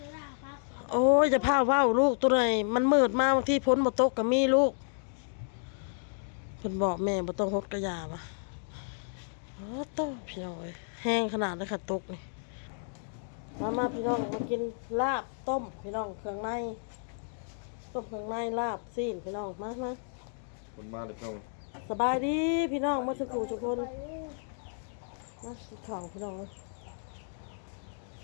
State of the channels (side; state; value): right; silent; digital silence